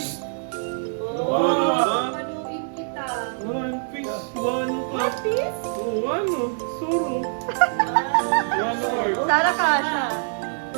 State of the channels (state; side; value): silent; left; digital silence